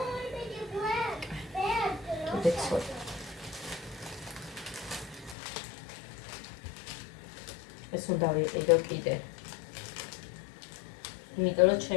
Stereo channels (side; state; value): right; drops out; at 5.4 s